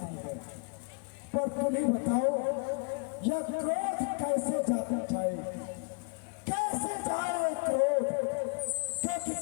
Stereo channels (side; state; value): right; quieter; 38.4 dB